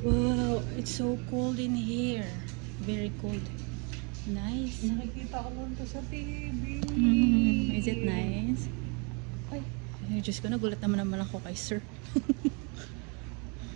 Wow, it's so cold in here. Very cold. Nice. Nakikita ko lang to sa TV. Is it nice? Ay, Diyos ko, nagulat naman ako kay sir.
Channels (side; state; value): left; quieter; 33.1 dB